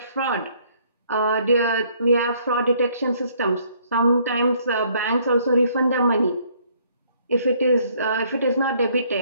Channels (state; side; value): inverted; both; correlation -0.64